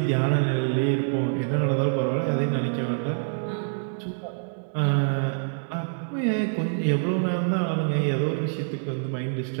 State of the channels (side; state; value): left; silent; digital silence